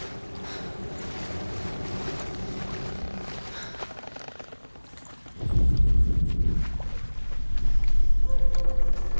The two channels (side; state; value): both; inverted; correlation -1.00